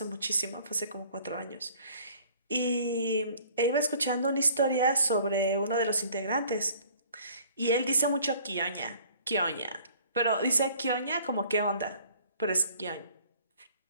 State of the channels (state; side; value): inverted; both; correlation -0.54